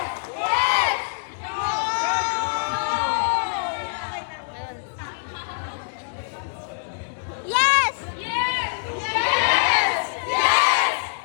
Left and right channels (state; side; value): silent; right; digital silence